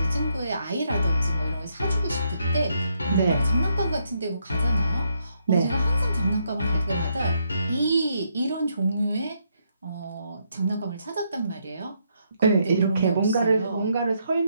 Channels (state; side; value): inverted; both; correlation -0.76